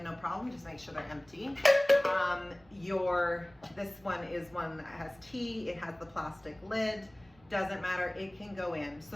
no problem, just make sure they're empty. This one is one that has tea, it has the plastic lid, doesn't matter, it can go in.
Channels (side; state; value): right; noise; rumble, 29 dB below the sound